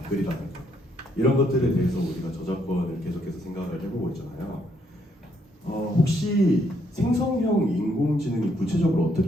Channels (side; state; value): both; normal; correlation 0.72